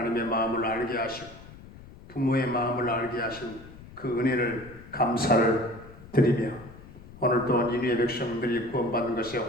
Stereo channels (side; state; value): left; noise; rumble, 18 dB below the sound